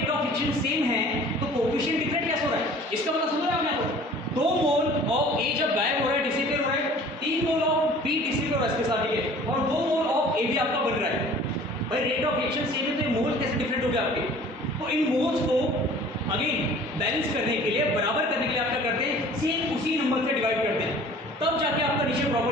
ऑफ एक्शन सेम है तो कोएफिशिएंट डिफरेंट कैसे हो रहा है, इसका मतलब समझ रहे हैं आप, यहाँ 2 मोल ऑफ A जब गायब हो रहा है, डिसिपेट हो रहा है, 3 मोल ऑफ B डिसिपेट हो रहा है इसके साथ, ठीक है, और 2 मोल ऑफ A भी आपका बन रहा है। भाई रेट ऑफ एक्शन सेम है तो ये मोल कैसे डिफरेंट हो गया आपके, तो इन मोल्स को अगेन बैलेंस करने के लिए, बराबर करने के लिए आप क्या करते हैं, सेम उसी नंबर से डिवाइड करते हैं, तब जाके आपका नीचे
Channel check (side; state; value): both; normal; correlation 0.48